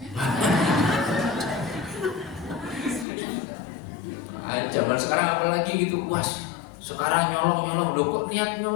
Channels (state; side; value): drops out; right; at 3.1 s